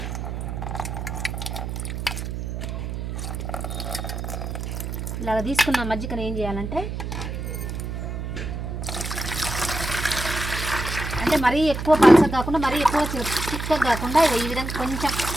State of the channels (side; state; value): right; noise; hum, 5 dB below the sound